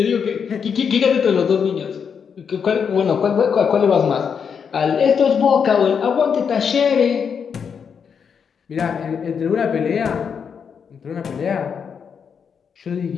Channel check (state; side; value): quieter; right; 6.7 dB